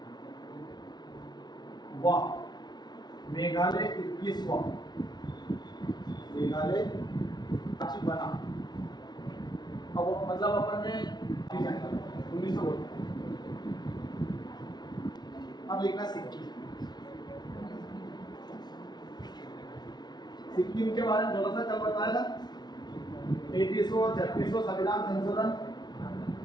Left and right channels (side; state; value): right; late; 0.20 ms